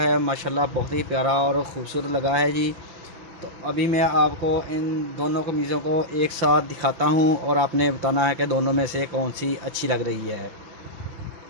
माशाल्लाह बहुत ही प्यारा और ख़ूबसूरत लगा है जी। तो अभी मैं आपको इन दोनों कमीज़ों को एक साथ दिखाता हूँ और आपने बताना है कि दोनों में से कौन सी अच्छी लग रही है।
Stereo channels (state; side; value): late; left; 5.8 ms